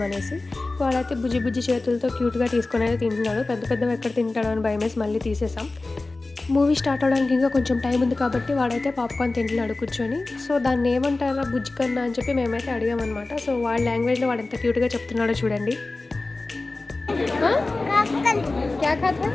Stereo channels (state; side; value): quieter; right; 3.3 dB